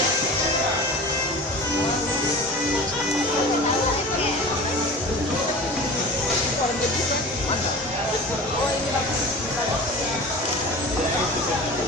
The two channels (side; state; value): both; normal; correlation 0.36